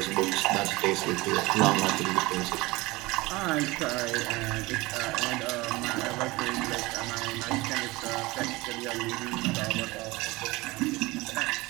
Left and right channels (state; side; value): quieter; left; 21.7 dB